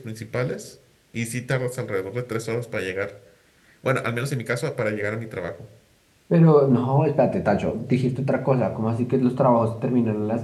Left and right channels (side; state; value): both; identical; correlation 1.00